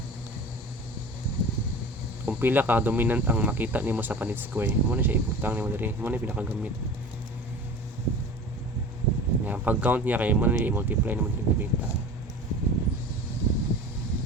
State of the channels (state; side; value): normal; both; correlation 0.37